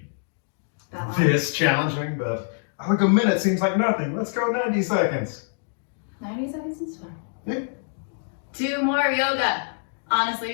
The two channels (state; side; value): silent; right; digital silence